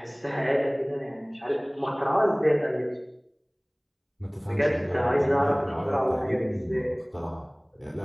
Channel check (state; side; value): identical; both; correlation 1.00